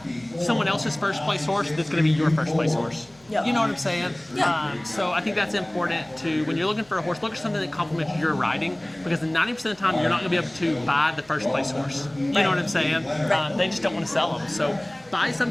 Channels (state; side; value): noise; left; hum, 30 dB below the sound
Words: someone else's first place horse that's going to be your first place horse. You know what I'm saying? So I think that's important to, when you're looking for a horse, look for something that complements your riding, because 90% of the time you're not going to be able to buy the first place horse. You know what I'm saying? They just don't want to sell them. So buy